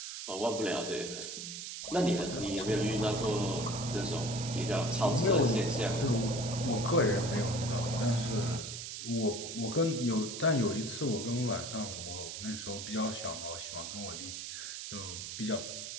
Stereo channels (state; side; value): noise; right; hiss, 7 dB below the sound